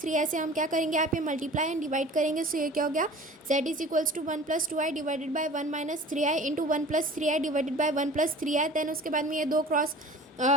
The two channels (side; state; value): both; normal; correlation 0.43